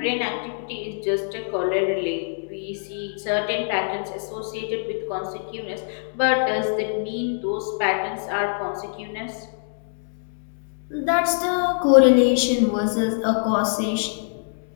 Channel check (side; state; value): right; silent; digital silence